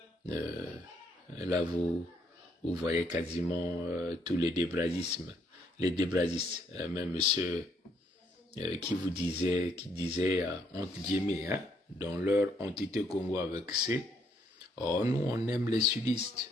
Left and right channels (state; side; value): normal; both; correlation 0.70